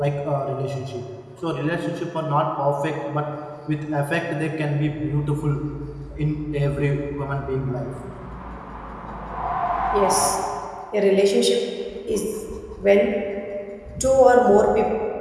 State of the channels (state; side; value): identical; both; correlation 1.00